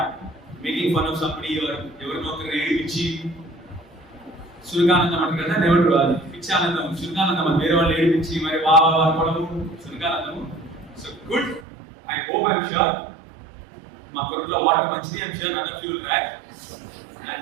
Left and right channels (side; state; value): left; drops out; at 11.7 s